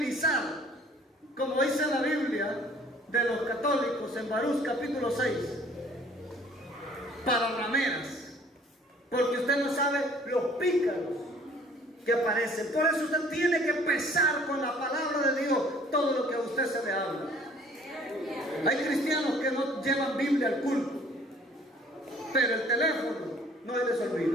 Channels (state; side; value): normal; both; correlation 0.55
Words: como dice la Biblia de los católicos en Baruch capítulo 6, para rameras, porque usted no sabe los pícaros que aparecen. Por eso usted tiene que pesar con la palabra de Dios todo lo que a usted se le habla. Hay cristianos que no llevan Biblia al culto, pero el teléfono no se les